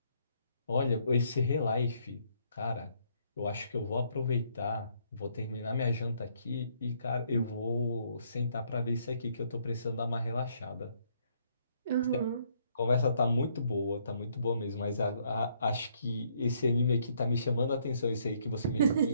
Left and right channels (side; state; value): both; inverted; correlation -0.69